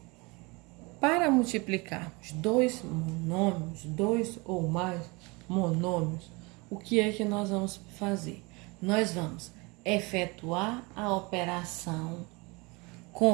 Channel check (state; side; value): quieter; left; 26.5 dB